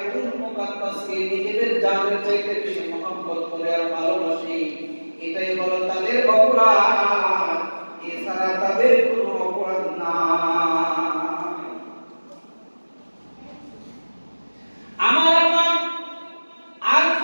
মুকাদ্দাসকে নিজেদের জানের চাইতে বেশি মহব্বত করে আর ভালোবাসে। এটাই হলো তাদের অপরাধ, এছাড়া তাদের কোনো অপরাধ না। আমার আর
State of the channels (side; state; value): both; inverted; correlation -1.00